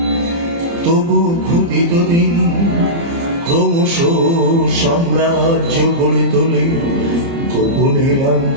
তবু ক্ষুদিত দিন ক্রমশ সাম্রাজ্য গড়ে তোলে, গোপনে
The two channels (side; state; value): left; late; 30 ms